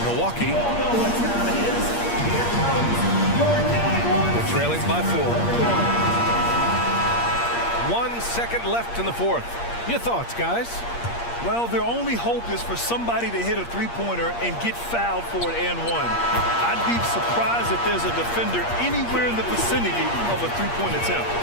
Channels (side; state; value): right; late; 8.5 ms